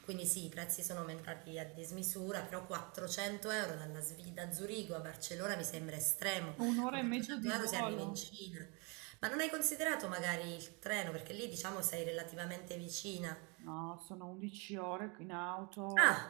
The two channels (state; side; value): quieter; left; 31.5 dB